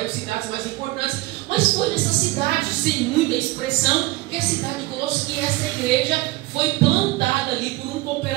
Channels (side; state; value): left; quieter; 20.4 dB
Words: cidades mais importantes. Mas foi nessa cidade, sem muita expressão, que a cidade de Colossos, que essa igreja foi plantada ali por um